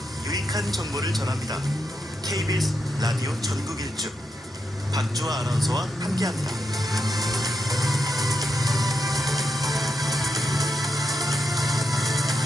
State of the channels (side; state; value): both; normal; correlation 0.84